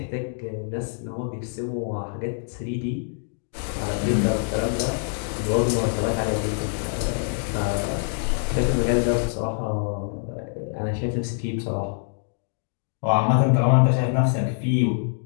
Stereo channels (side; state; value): right; silent; digital silence